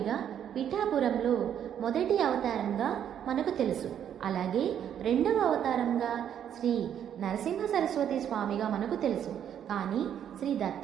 పిఠాపురంలో మొదటి అవతారంగా మనకు తెలుసు. అలాగే రెండవ అవతారంగా శ్రీ నరసింహ సరస్వతి స్వామిగా మనకు తెలుసు. కానీ శ్రీ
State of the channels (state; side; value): quieter; left; 9.5 dB